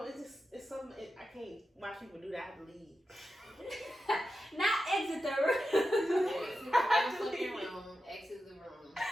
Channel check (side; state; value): both; normal; correlation 0.90